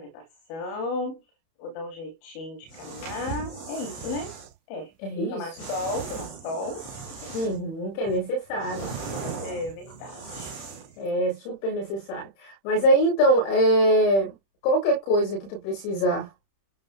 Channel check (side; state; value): right; late; 31 ms